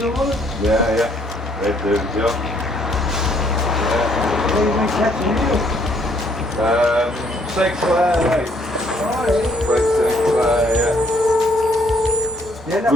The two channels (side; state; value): both; normal; correlation 0.66